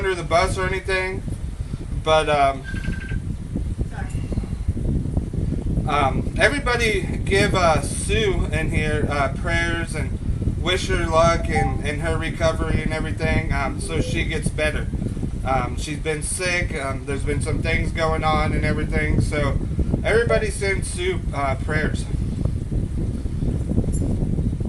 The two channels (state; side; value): identical; both; correlation 1.00